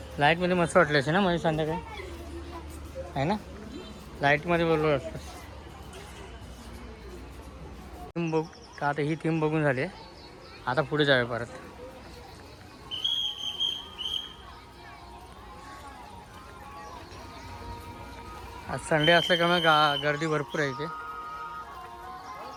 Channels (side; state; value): both; identical; correlation 1.00